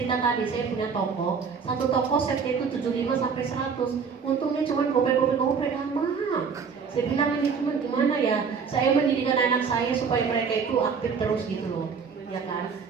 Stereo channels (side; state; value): left; quieter; 5.9 dB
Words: tadi, saya punya toko. Satu toko setnya itu 75 sampai 100. Untungnya cuma gope amat. Saya bilang ini cuma gimana ya? Saya mendidikan anak saya supaya mereka itu aktif terus gitu loh. Ya kan?